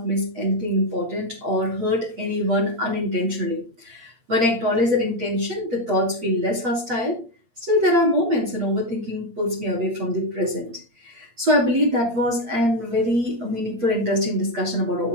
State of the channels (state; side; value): late; left; 8.7 ms